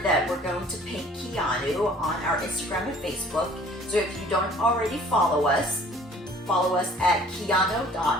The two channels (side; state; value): both; normal; correlation 0.52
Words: we're going to paint Keanu on our Instagram and Facebook. So if you don't already follow us at